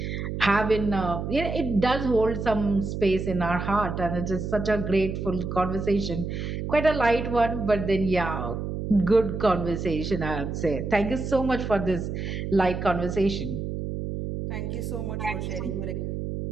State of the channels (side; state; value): right; noise; hum, 4 dB below the sound